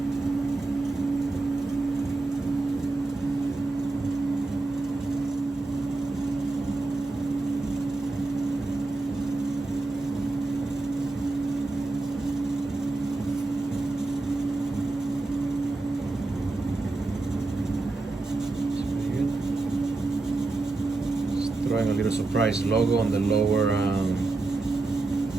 Throwing a little surprise logo on the lower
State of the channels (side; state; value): left; quieter; 3.3 dB